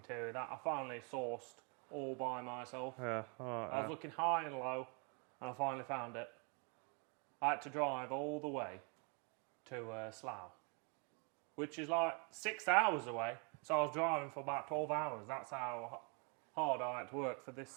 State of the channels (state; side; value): quieter; left; 35.5 dB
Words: that I finally sourced all by myself. Yeah, alright. I was looking high and low and I finally found it. I had to drive all the way to Slough, which is like 6 hours away. So I was driving for about 12 hours. That's how hard I had to work for